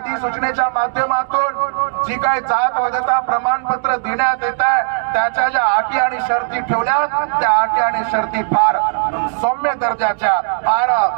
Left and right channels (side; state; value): left; silent; digital silence